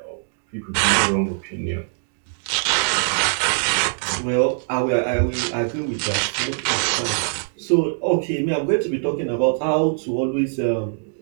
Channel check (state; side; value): silent; left; digital silence